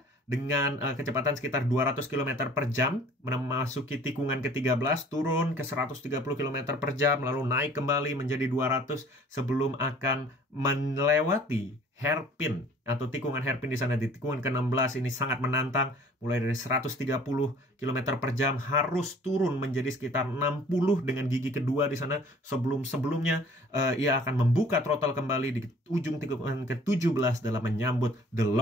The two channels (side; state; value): both; normal; correlation 0.52